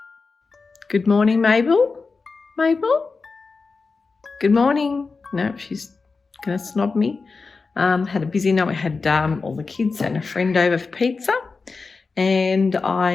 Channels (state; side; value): quieter; right; 4.4 dB